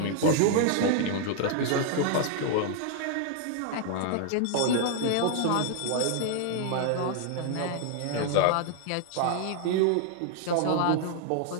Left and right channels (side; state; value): both; different; correlation 0.00